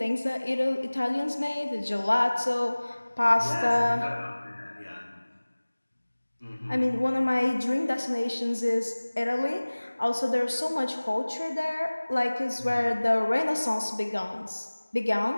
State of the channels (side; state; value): both; inverted; correlation -1.00